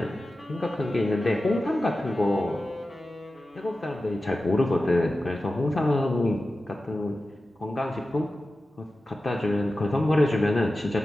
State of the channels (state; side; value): normal; both; correlation 0.94